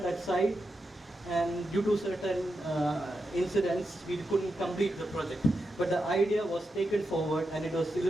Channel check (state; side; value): normal; both; correlation 0.87